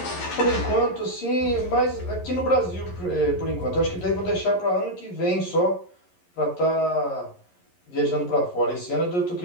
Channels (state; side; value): late; right; 11 ms